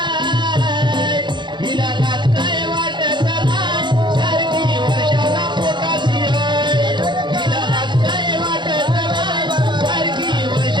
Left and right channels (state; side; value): late; left; 0.22 ms